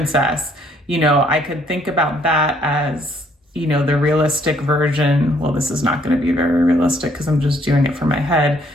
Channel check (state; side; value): normal; both; correlation 0.66